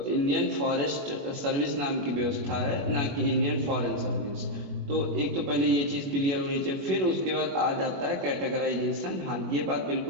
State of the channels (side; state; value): left; late; 21 ms